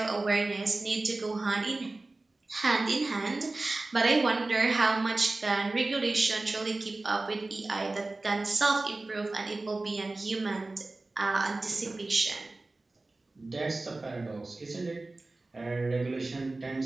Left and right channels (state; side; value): quieter; left; 3.1 dB